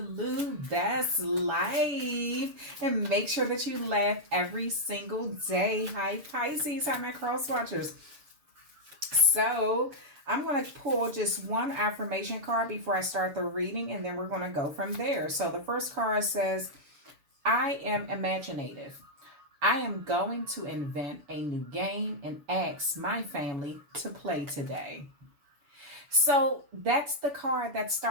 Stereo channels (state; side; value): late; left; 6.9 ms